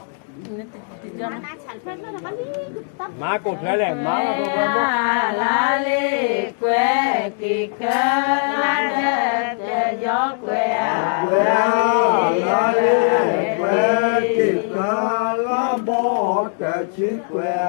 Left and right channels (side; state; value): right; silent; 61 dB below the other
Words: မာကိုထွဲလဲမာကဘောဘောလာလေးကွယ်ကိကလာတဲ့ရောကွယ်ကွယ်လာလေးကွယ်ကိကလာဘောတချီကွယ်